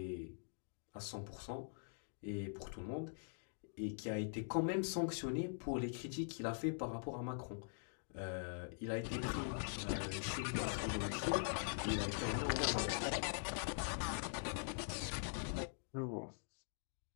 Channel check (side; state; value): right; silent; digital silence